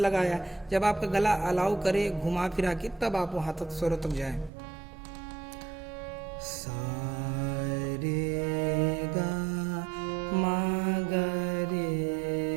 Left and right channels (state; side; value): drops out; left; at 4.5 s